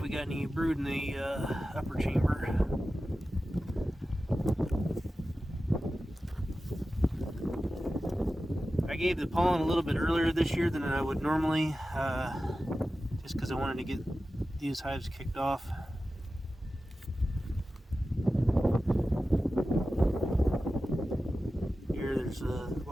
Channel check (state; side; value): normal; both; correlation 0.94